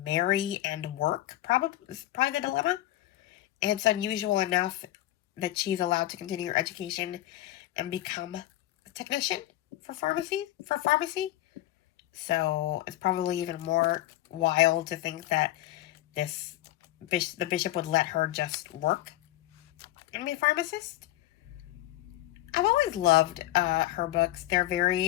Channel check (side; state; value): right; quieter; 15.4 dB